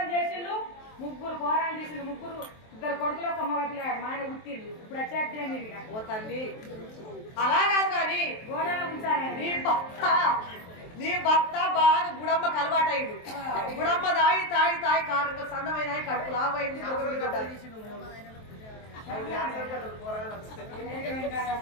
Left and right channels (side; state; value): right; late; 23 ms